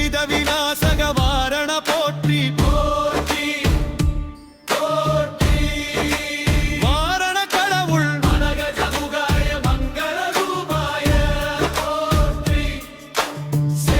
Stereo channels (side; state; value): both; identical; correlation 1.00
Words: விநாசக வாரண போற்றி. போற்றி போற்றி. வாரண கடவுள் மதகஜமுகாய மங்கள ரூபாய போற்றி.